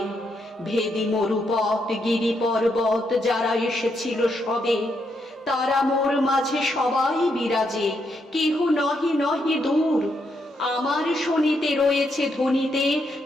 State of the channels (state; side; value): normal; both; correlation 0.79